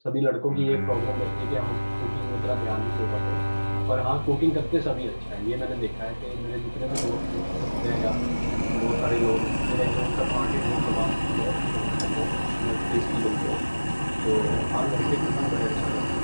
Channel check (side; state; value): both; inverted; correlation -1.00